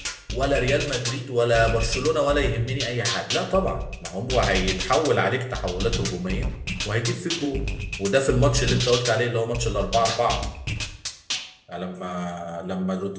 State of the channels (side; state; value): both; identical; correlation 1.00